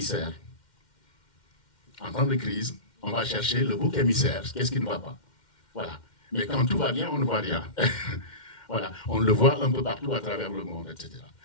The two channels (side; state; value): right; late; 2.1 ms